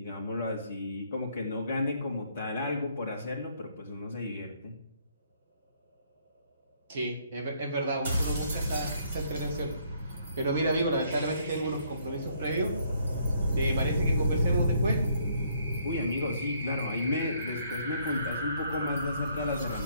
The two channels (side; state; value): both; inverted; correlation -0.67